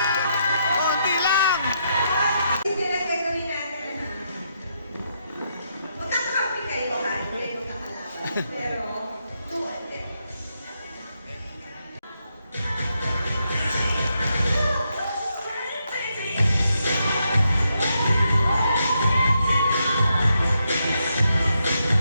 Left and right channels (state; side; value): inverted; both; correlation -0.80